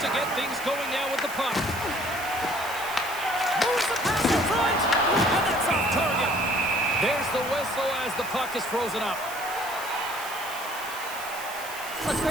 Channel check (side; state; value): right; noise; hiss, 13 dB below the sound